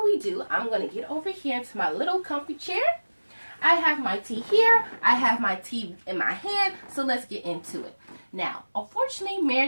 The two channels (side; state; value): both; inverted; correlation -1.00